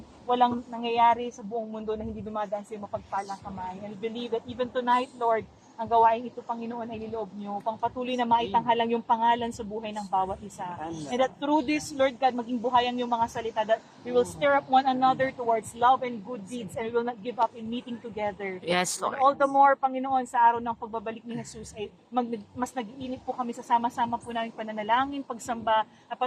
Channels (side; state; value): both; identical; correlation 1.00